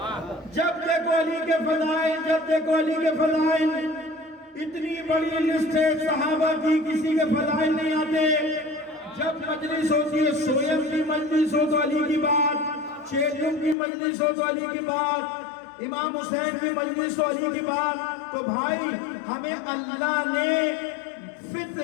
جب دیکھو علی کے فضائل، جب دیکھو علی کے فضائل، اتنی بڑی لسٹ ہے صحابہ کی، کسی کے فضائل نہیں آتے۔ جب مجلس ہوتی ہے، سویم کی مجلس ہو تو علی کی بات، چیلم کی مجلس ہو تو علی کی بات، امام حسین کی مجلس ہو علی کی بات، تو بھائی ہمیں اللہ نے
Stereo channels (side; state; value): right; drops out; at 13.8 s